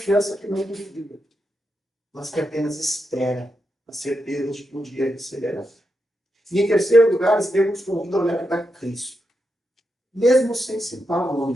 que não duvida, mas que apenas espera a certeza de que um dia receberá. E em terceiro lugar, Estevão nos convida a olhar para Cristo, mesmo sem citar o nome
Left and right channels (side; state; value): both; normal; correlation 0.86